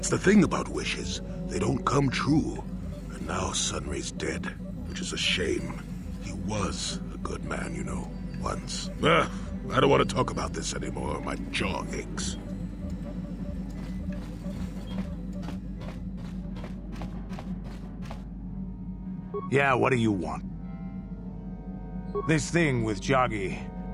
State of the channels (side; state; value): both; identical; correlation 1.00